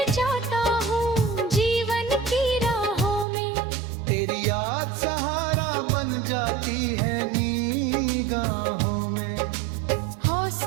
जाता हूँ जीवन की राहों में, तेरी याद सहारा बन जाती है निगाहों में।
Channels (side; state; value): left; drops out; at 3.2 s